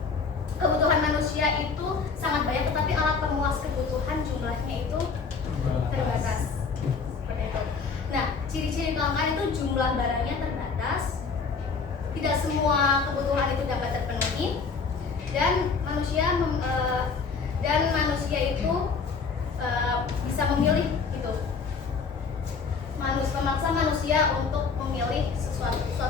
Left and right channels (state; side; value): quieter; right; 5.1 dB